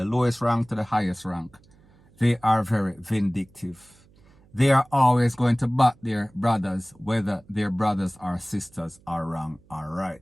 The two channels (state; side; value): noise; right; hum, 29 dB below the sound